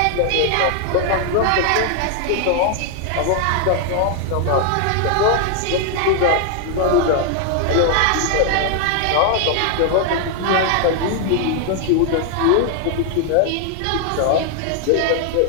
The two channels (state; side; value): different; both; correlation 0.00